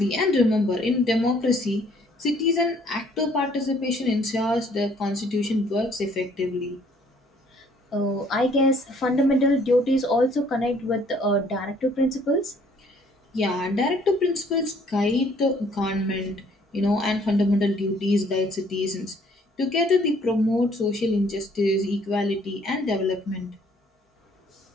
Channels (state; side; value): normal; both; correlation 0.61